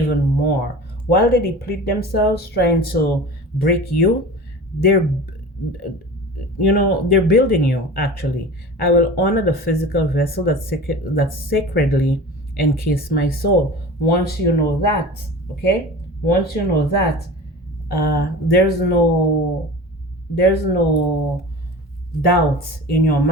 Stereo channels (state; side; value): normal; both; correlation 0.36